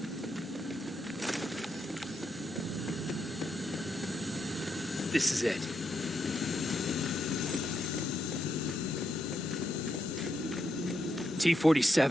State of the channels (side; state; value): both; normal; correlation 0.81